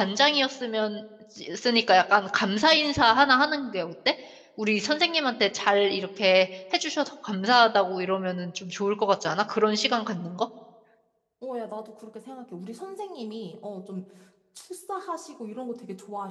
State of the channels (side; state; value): both; identical; correlation 1.00